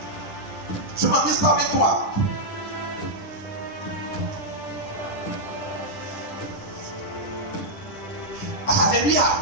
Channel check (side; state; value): right; late; 10 ms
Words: Je ne m'amuse pas avec toi. Alléluia.